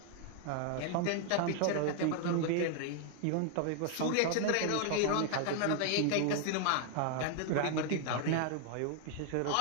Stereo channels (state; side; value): different; both; correlation 0.00